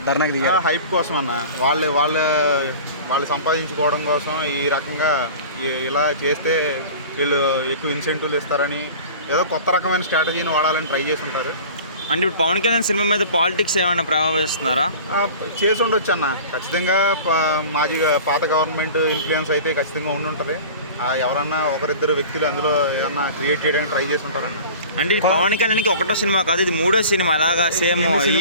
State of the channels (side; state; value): both; inverted; correlation -0.40